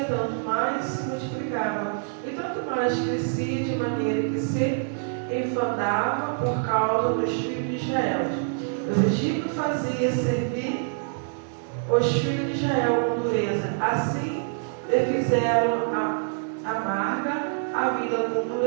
tanto mais se multiplicava, e tanto mais crescia, de maneira que se enfadava por causa dos filhos de Israel. Os egípcios faziam servir os filhos de Israel com dureza. Assim lhe fizeram amarga a vida com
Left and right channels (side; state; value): left; silent; 61 dB below the other